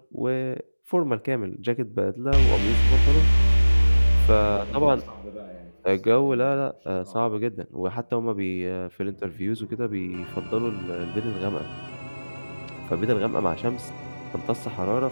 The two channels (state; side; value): inverted; both; correlation -1.00